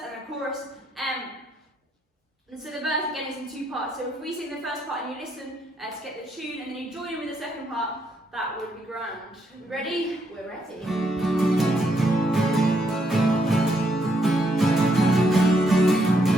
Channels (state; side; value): normal; both; correlation 0.75